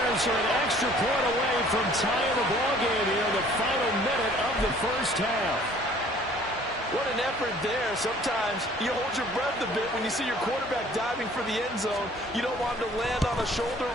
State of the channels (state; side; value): normal; both; correlation 0.54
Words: are an extra point away from tying the ballgame here in the final minute of the first half. What an effort there. Sometimes you hold your breath a bit when you see your quarterback diving for the end zone. You don't want him to land on a shoulder